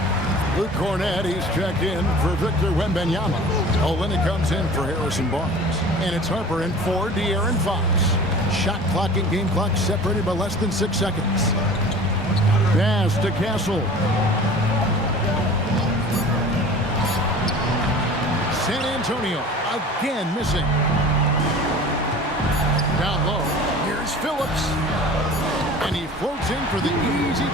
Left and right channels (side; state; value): both; normal; correlation 0.42